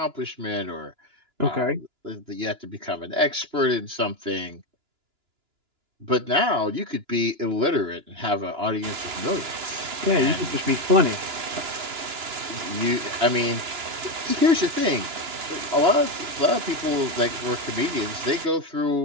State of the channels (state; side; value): late; left; 2.9 ms